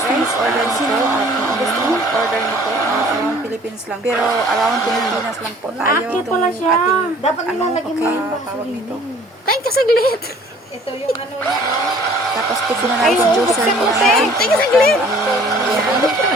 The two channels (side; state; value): both; normal; correlation 0.53